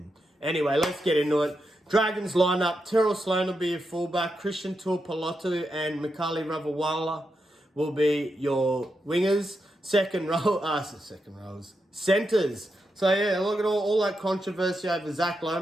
Anyway, let's get into it. Dragons lineup. Terrell Sloan will be your fullback. Christian Tuipulotu and Mikali Ravawala will be your wingers. Centers. So yeah, look at all that controversy over Zach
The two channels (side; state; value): both; normal; correlation 0.85